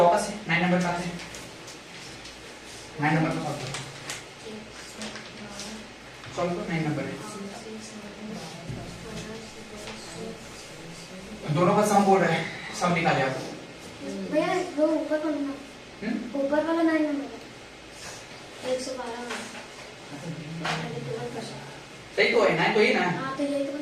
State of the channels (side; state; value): both; identical; correlation 1.00